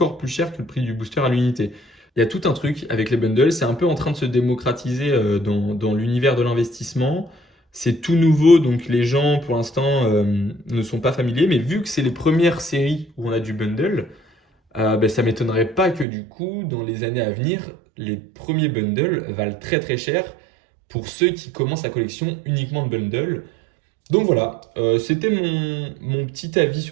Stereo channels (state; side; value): drops out; left; at 16.1 s